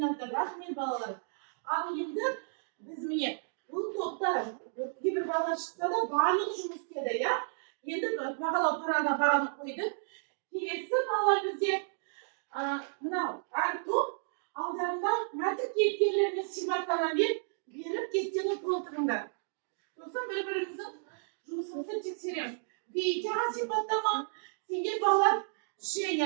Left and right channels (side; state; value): left; silent; digital silence